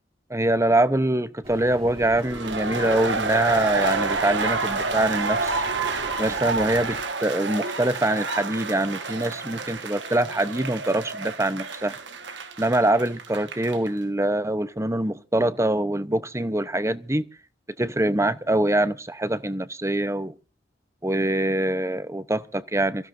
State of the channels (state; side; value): normal; both; correlation 0.58